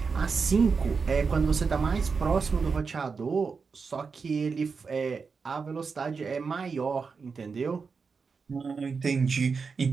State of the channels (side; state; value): left; quieter; 5.1 dB